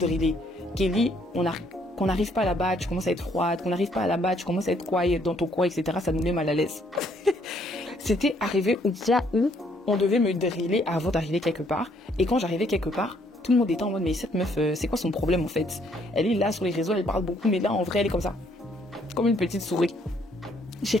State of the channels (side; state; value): both; normal; correlation 0.67